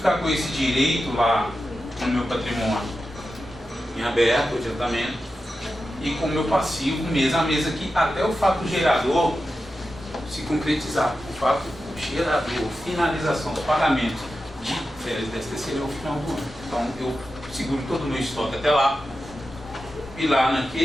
com esse direito lá no meu patrimônio em aberto, o adiantamento, e com o meu passivo mês a mês aqui, até o fato gerador se concretizar. O fato gerador, finalização do pagamento de férias desse terceiro é o final do ano. Então eu seguro todo o meu estoque até lá, e lá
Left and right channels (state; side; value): normal; both; correlation 0.91